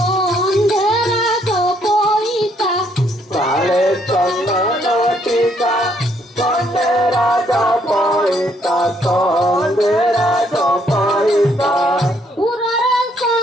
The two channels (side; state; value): both; normal; correlation 0.70